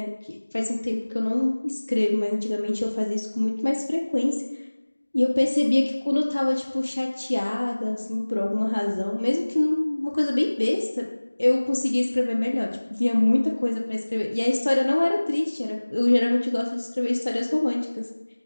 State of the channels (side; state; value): both; inverted; correlation -1.00